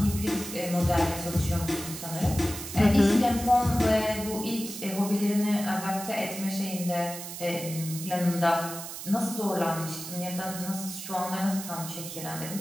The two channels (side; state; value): right; noise; hiss, 9 dB below the sound